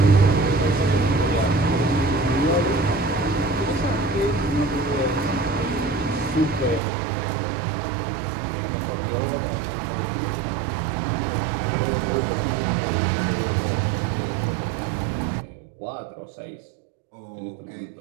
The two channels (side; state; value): left; drops out; at 6.8 s